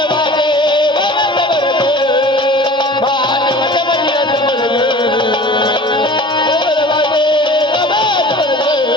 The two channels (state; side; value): normal; both; correlation 0.42